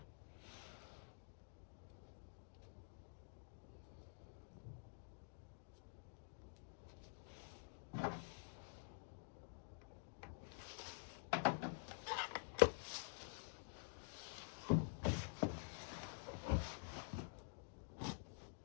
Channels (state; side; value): silent; right; digital silence